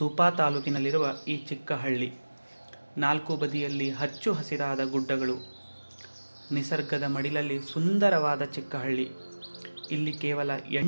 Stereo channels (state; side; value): inverted; both; correlation -1.00